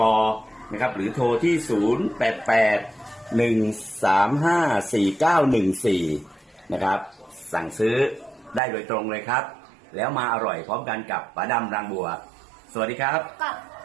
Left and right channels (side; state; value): left; drops out; at 8.6 s